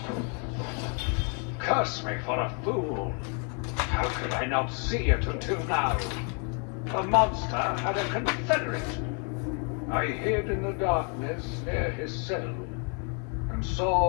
Curse me for a fool. How could I not see it until now? The monster had a confederate. I hid in the darkness near his cell and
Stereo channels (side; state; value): right; quieter; 38.7 dB